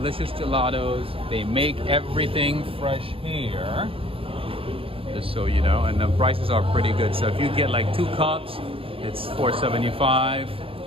gelatos. They make everything fresh here, just so you know, and the prices are pretty good. So if you get like 2 cups, it's $4.75.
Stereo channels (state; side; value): late; left; 0.27 ms